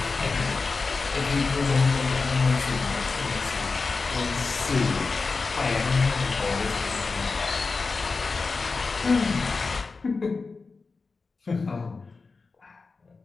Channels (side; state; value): right; quieter; 4.2 dB